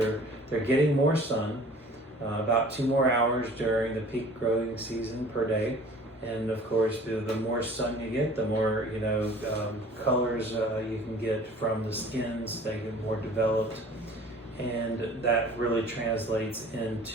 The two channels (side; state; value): both; normal; correlation 0.48